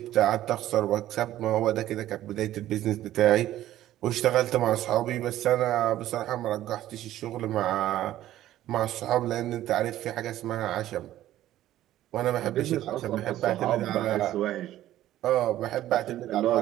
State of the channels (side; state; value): left; quieter; 13.6 dB